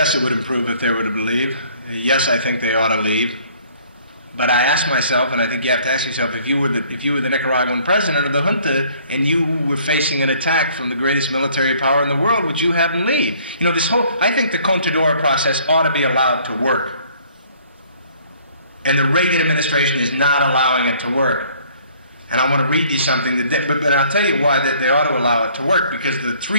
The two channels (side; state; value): both; inverted; correlation -0.57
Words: it would improve if they were to leave. Yes, I think they ought to leave. But I ask myself, and I think you have to ask yourself, if you were the Nicaraguan president of the junta and you were facing an attack from the greatest military power in the world, would you have them leave? I think the Contadora process ought to be allowed to work. And the Reagan administration is not allowing it to work. And I want to read you something, but I'll tell you why they ought to allow it to work, because the